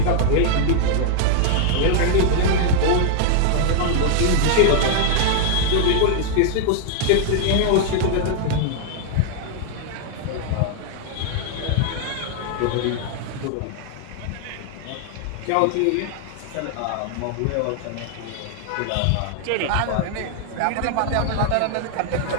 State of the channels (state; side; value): different; both; correlation 0.00